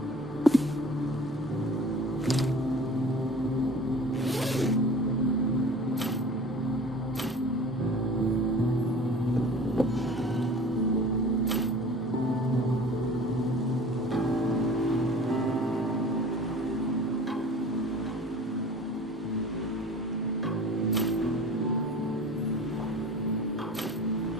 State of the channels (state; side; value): normal; both; correlation 0.42